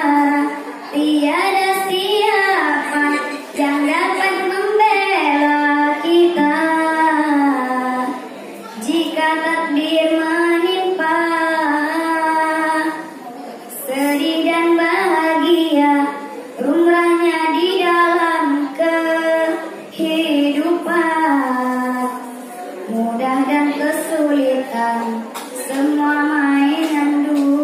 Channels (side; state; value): both; identical; correlation 1.00